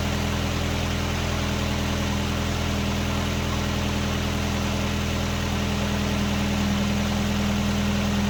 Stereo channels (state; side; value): identical; both; correlation 1.00